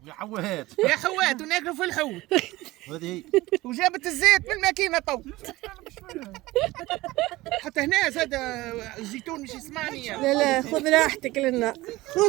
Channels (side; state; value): left; quieter; 19.1 dB